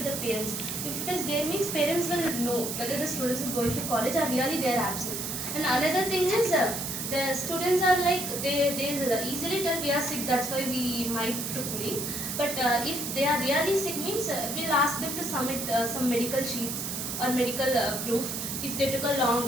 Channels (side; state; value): right; noise; hiss, 4 dB below the sound